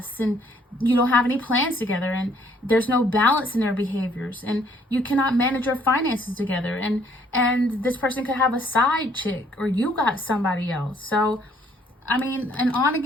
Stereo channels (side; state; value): both; normal; correlation 0.64